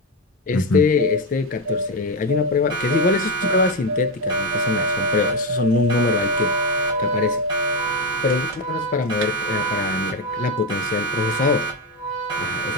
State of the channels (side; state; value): both; normal; correlation 0.11